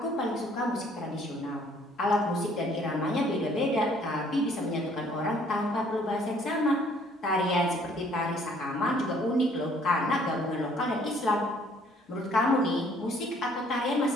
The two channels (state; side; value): normal; both; correlation 0.60